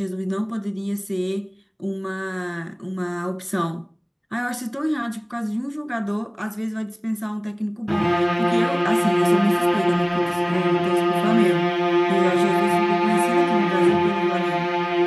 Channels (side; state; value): both; identical; correlation 1.00